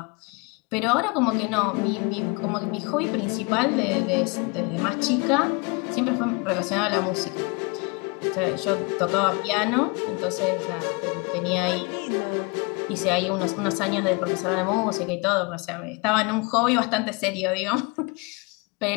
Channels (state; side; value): quieter; right; 29.9 dB